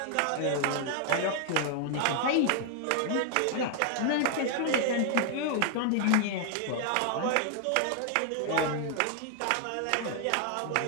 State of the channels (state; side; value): different; both; correlation 0.00